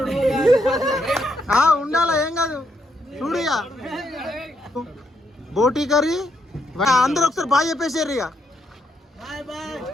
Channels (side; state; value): both; normal; correlation 0.77